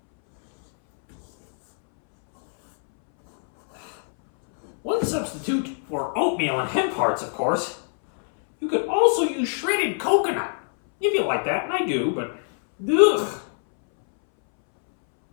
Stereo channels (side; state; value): right; silent; 63 dB below the other